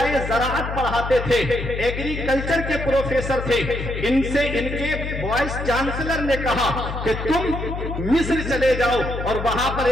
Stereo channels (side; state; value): left; noise; hum, 6 dB below the sound